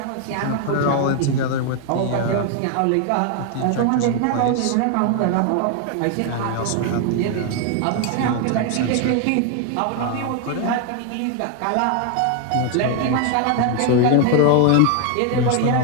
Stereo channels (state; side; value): different; both; correlation 0.00